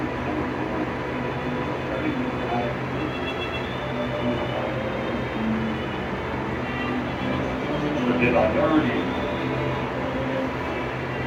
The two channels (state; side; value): identical; both; correlation 1.00